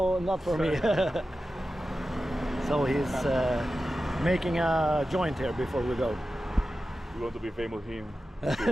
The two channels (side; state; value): both; normal; correlation 0.93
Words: not for me. So he's making a joint here before we go. We want to be famous him